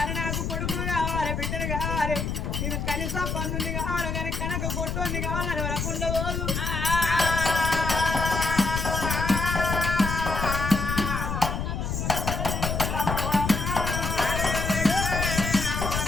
నాకు కొడుకులు కావాలి బిడ్డలు కావాలి నేను కనీసం పన్నుని కావాలి కానీ కనక కొట్టుని కావాలని వరకుండా పోదు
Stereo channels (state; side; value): noise; left; rumble, 2 dB below the sound